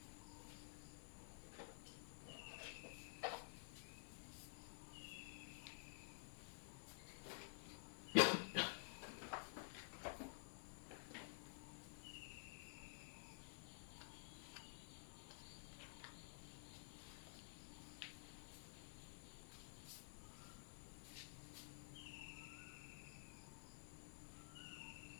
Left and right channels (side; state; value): right; silent; digital silence